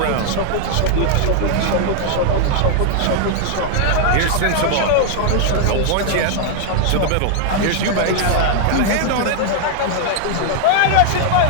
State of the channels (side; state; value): both; different; correlation 0.00